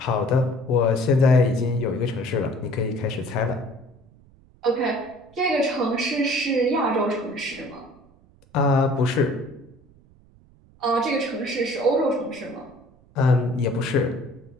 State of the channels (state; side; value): noise; right; rumble, 28 dB below the sound